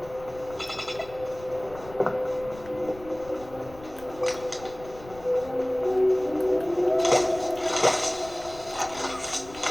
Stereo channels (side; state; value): left; noise; rumble, 19 dB below the sound